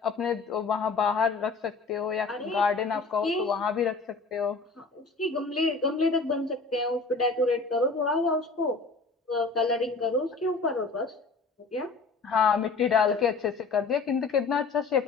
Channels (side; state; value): right; quieter; 4.2 dB